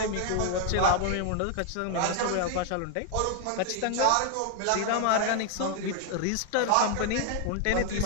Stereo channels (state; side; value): different; both; correlation 0.00